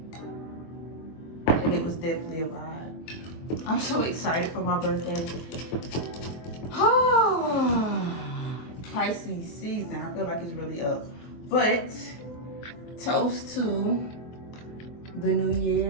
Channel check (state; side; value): late; right; 24 ms